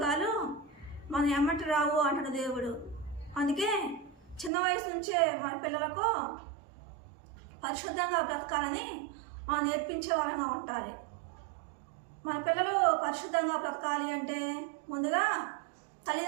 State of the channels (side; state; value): left; drops out; at 4.5 s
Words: మన ఎమ్మటి రావు అంటాడు దేవుడు. అందుకే చిన్న వయసు నుంచే మన పిల్లలకు పరిశుద్ధంగా బ్రతకాలని మనం నేర్పించే వారంగా ఉండాలి. మన పిల్లలు పరిశుద్ధంగా బ్రతకాలి అంటే ముందుగా